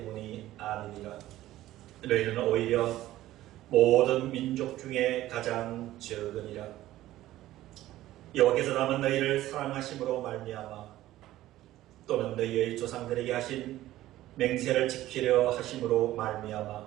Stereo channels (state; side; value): quieter; left; 15.0 dB